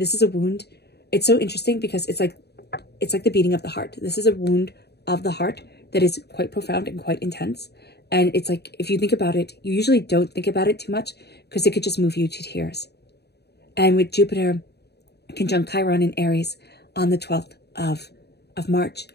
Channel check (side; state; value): right; late; 0.48 ms